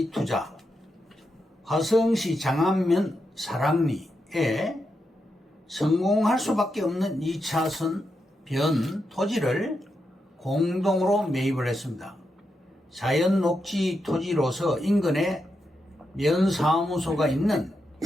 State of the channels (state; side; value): normal; both; correlation 0.85